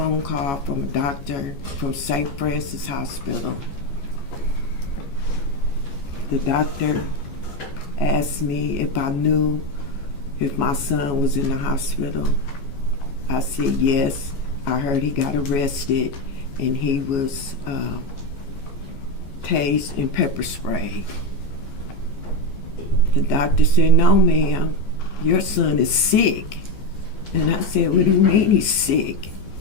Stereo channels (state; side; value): late; right; 14 ms